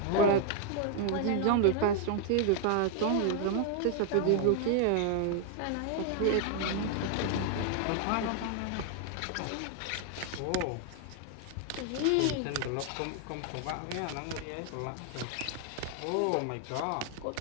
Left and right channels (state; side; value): different; both; correlation 0.00